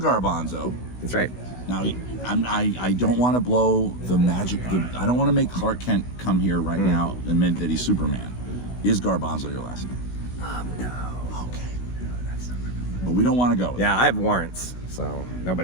That's right. Now, I don't want to blow the magic. I don't want to make Clark Kent come here right now and admit that he's Superman. Is Garbanzo your last name? No. Okay. No, that's not my real name. But we don't want to go with Yeah, I have warrants, so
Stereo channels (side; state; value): right; late; 16 ms